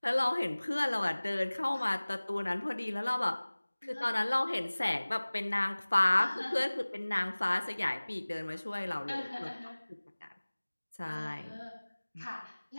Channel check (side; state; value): both; inverted; correlation -1.00